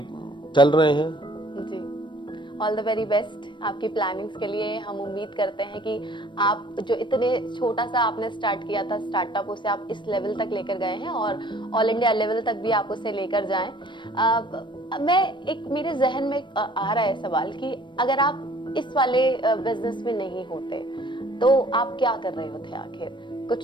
चल रहे हैं। जी। ऑल द वेरी बेस्ट आपकी प्लानिंग्स के लिए। हम उम्मीद करते हैं कि आप जो इतने छोटा सा आपने स्टार्ट किया था स्टार्टअप, उसे आप इस लेवल तक लेकर गए हैं, और ऑल इंडिया लेवल तक भी आप उसे लेकर जाएं। मेरे जहन में आ रहा है सवाल कि अगर आप इस वाले बिजनेस में नहीं होते तो आप क्या कर रहे होते आखिर?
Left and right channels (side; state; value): right; late; 0.23 ms